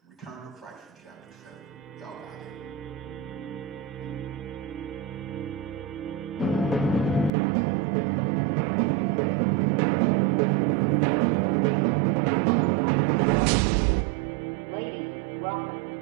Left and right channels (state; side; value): drops out; left; at 7.3 s